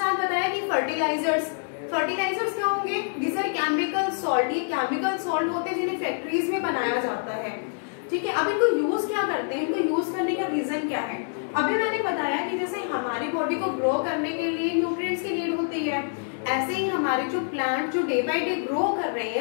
बताया कि फर्टिलाइजर्स। फर्टिलाइजर्स क्या होंगे, दिस आर केमिकल सॉल्ट। ये केमिकल सॉल्ट होते हैं जिन्हें फैक्ट्रीज में बनाया जाता है। ठीक है, अब इनको यूज क्या करते हैं, इनको यूज करने का रीजन क्या है। अभी मैंने बताया कि जैसे हमारी बॉडी को ग्रो करने के लिए न्यूट्रिएंट्स की नीड होती है, ऐसे ही हमारे जो प्लांट जो डे बाय डे ग्रो कर रहे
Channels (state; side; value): silent; right; digital silence